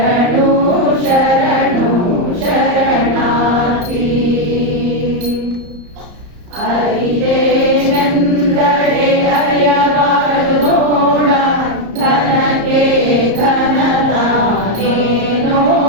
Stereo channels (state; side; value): late; left; 34 ms